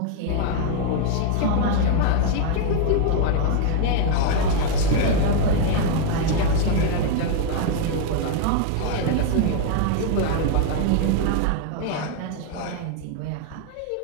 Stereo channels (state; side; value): different; both; correlation 0.00